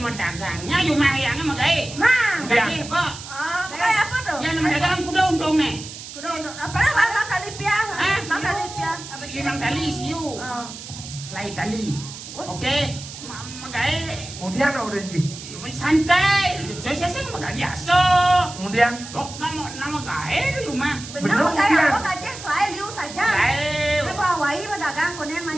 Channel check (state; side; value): noise; right; hiss, 12 dB below the sound